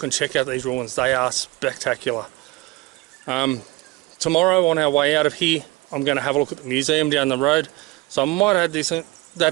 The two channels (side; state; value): left; quieter; 21.4 dB